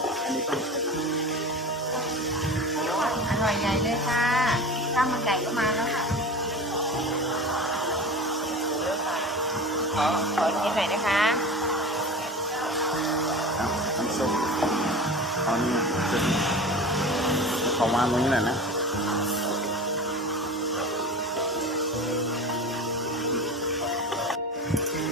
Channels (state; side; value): normal; both; correlation 0.33